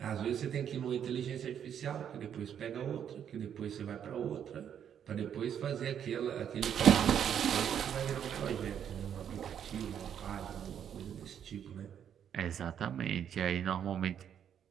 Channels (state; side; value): quieter; left; 8.9 dB